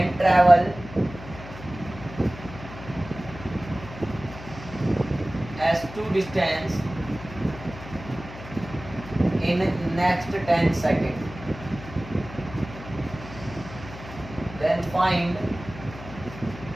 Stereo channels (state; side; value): noise; left; hum, 14 dB below the sound